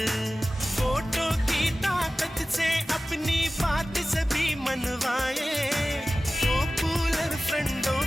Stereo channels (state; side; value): normal; both; correlation 0.96